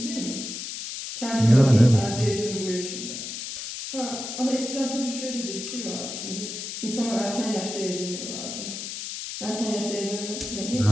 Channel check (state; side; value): noise; left; hiss, 7 dB below the sound